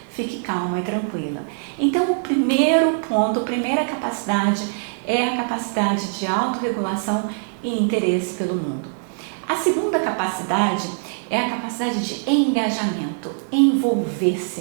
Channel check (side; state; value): left; silent; 60 dB below the other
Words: fique calma e tranquila. Então, o primeiro ponto, a primeira capacidade é a capacidade de autorregulação e interesse pelo mundo. A segunda capacidade é a capacidade de engajamento,